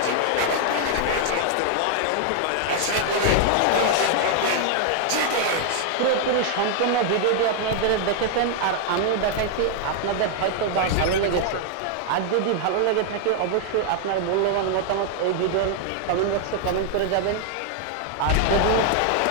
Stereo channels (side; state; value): both; different; correlation 0.00